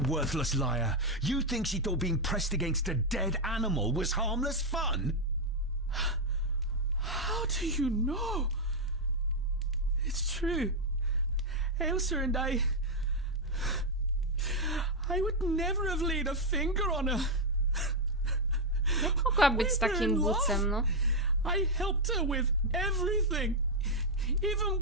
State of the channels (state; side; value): normal; both; correlation 0.00